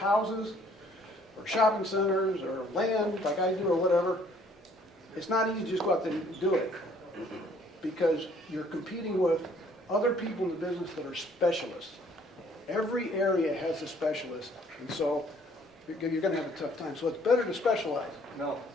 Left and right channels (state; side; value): normal; both; correlation 0.60